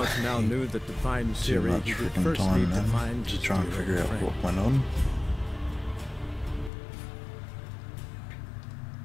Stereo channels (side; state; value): right; drops out; at 6.7 s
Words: now knew that to find too Ciri, much he would freaking first time need to then find to his try and dear figure old out friend. what went on.